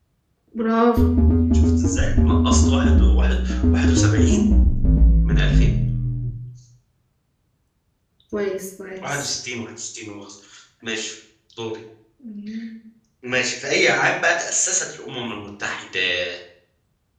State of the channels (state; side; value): identical; both; correlation 1.00